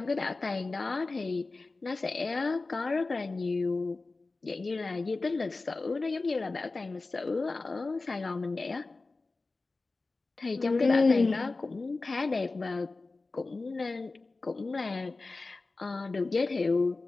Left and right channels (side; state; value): right; quieter; 3.6 dB